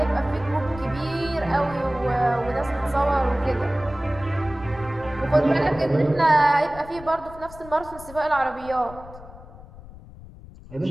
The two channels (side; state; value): left; noise; rumble, 17 dB below the sound